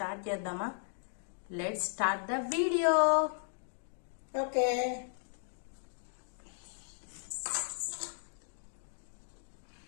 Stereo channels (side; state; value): right; silent; digital silence